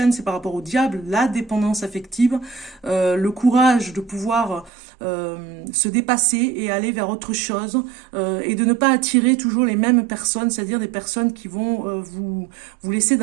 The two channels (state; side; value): drops out; left; at 4.7 s